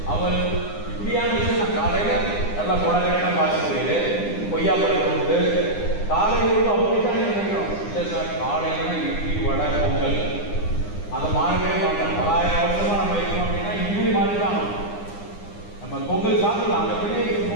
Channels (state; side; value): late; right; 9.8 ms